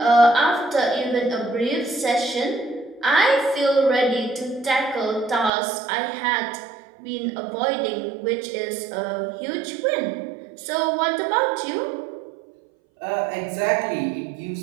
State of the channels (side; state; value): left; drops out; at 5.5 s